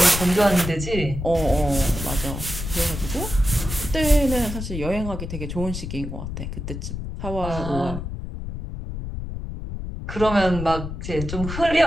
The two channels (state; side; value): noise; left; rumble, 6 dB below the sound